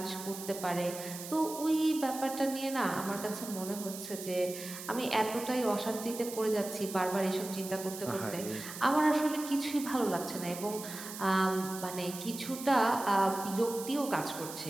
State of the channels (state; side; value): noise; right; hiss, 10 dB below the sound